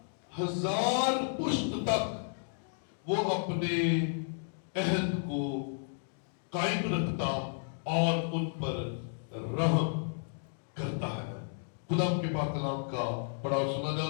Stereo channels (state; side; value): silent; right; digital silence